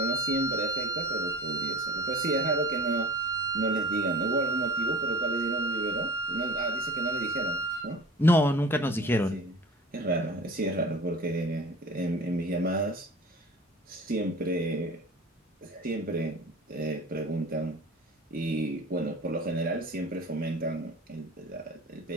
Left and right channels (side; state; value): both; normal; correlation 0.40